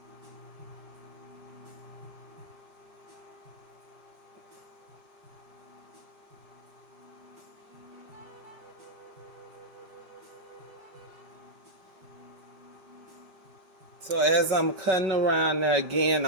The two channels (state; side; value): late; left; 5.3 ms